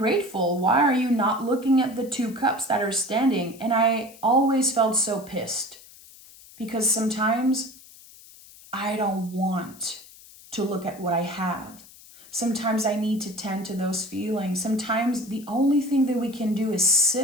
Why are you not looking at the 2 cups that are standing? And I always felt so pissed because sometimes I don't want to look at what I have. Sometimes I need to tend to those feelings. Sometimes the only thing that we can do is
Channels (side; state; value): left; noise; hiss, 21 dB below the sound